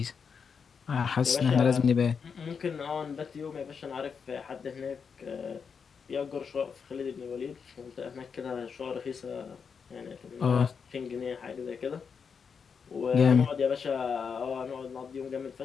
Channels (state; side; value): quieter; right; 6.1 dB